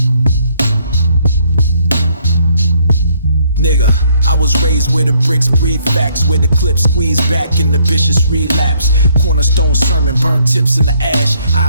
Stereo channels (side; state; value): both; inverted; correlation -0.68